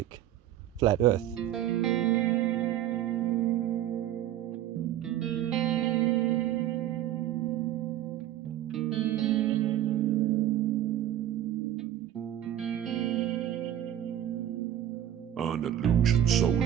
flat Earth? An illusion so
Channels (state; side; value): quieter; left; 12.0 dB